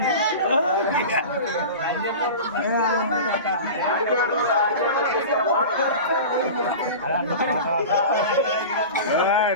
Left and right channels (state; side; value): inverted; both; correlation -0.32